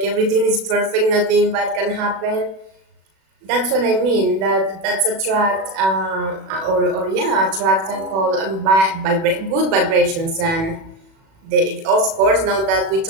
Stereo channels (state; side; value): late; left; 36 ms